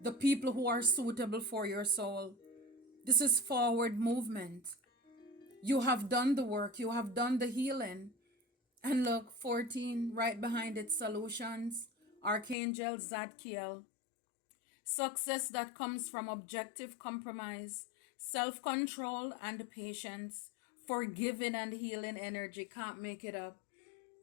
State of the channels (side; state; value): right; drops out; at 12.6 s